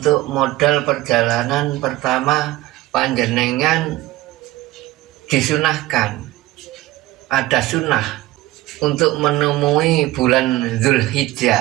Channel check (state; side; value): quieter; left; 17.3 dB